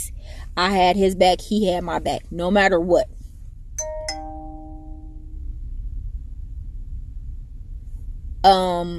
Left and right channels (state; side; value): identical; both; correlation 1.00